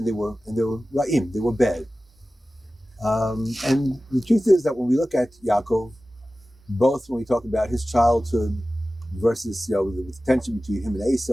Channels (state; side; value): normal; both; correlation 0.96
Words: they were ra'im, they were bad. And the truth is that when we look at Yaakov, both when we talk about his childhood versus the tension between him and